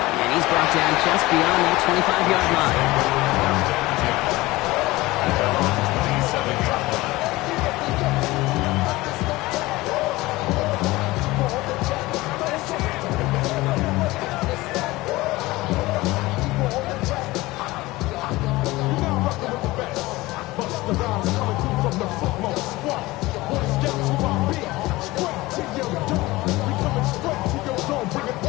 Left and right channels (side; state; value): right; quieter; 19.9 dB